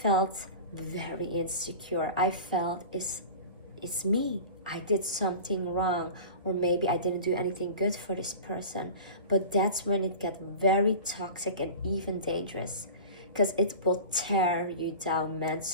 very insecure. I felt it's me. I did something wrong, or maybe I didn't do anything good for this person. But that's when it gets very toxic and even dangerous, because it will tear you down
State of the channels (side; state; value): both; inverted; correlation -0.35